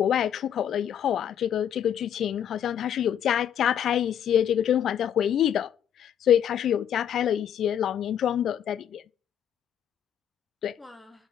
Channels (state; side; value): quieter; right; 9.4 dB